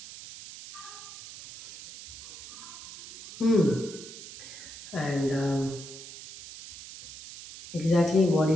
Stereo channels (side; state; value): right; noise; hiss, 14 dB below the sound